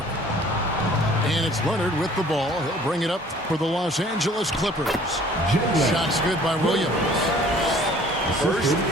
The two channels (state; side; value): normal; both; correlation 0.53